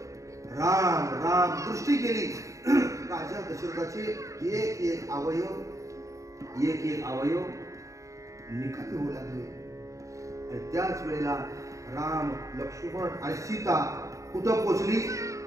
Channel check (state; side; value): late; left; 0.15 ms